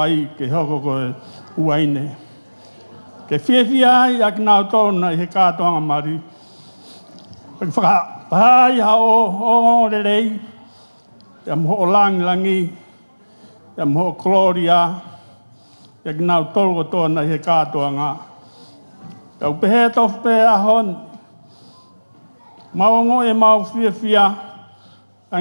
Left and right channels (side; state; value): both; inverted; correlation -1.00